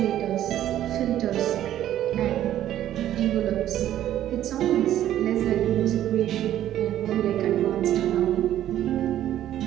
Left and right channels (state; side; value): quieter; left; 12.1 dB